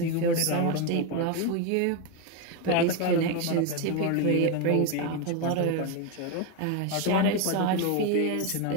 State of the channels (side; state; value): both; different; correlation 0.02